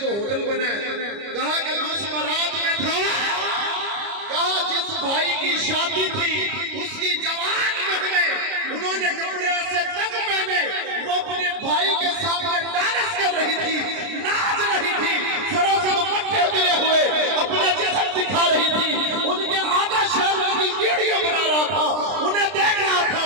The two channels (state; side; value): late; left; 30 ms